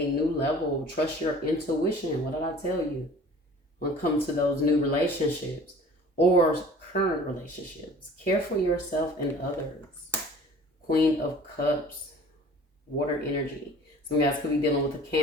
new level. Trust your intuition. What did I tell you? When it comes to those new relationships or current relationships, care for yourself and others. Queen of Cups, water energy. Some guys could be dealing with a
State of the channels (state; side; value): normal; both; correlation 0.46